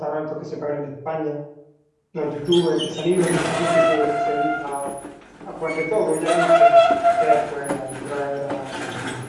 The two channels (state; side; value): identical; both; correlation 1.00